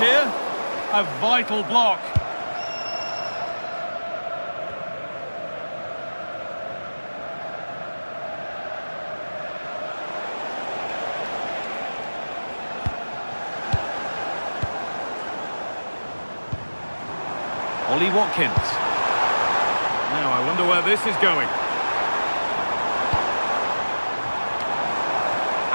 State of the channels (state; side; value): inverted; both; correlation -1.00